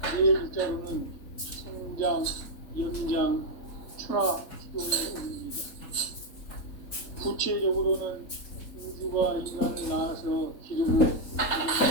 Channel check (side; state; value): right; late; 3.8 ms